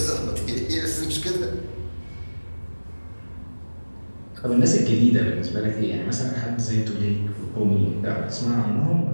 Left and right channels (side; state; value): both; inverted; correlation -1.00